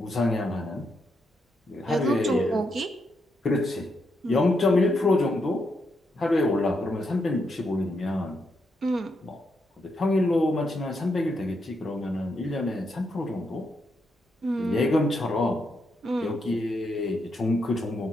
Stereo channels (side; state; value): both; normal; correlation 0.81